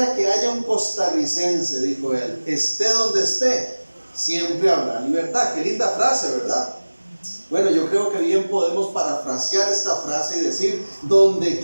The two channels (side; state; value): both; inverted; correlation -1.00